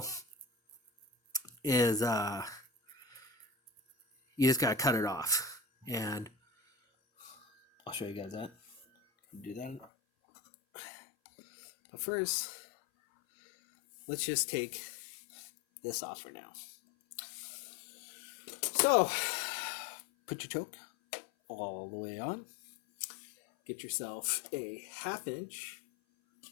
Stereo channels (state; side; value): drops out; right; at 9.9 s